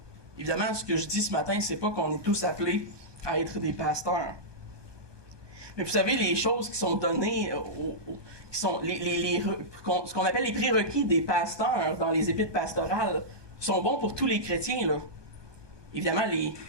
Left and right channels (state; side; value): late; left; 1.2 ms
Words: Évidemment, ce que je dis ce matin, c'est pas qu'on est tous appelés à être des pasteurs. Mais vous savez, les choses qui sont données, qui sont ce qu'on appelle les prérequis des pasteurs dans les épîtres pastorales, sont bons pour tous les chrétiens, là. Évidemment,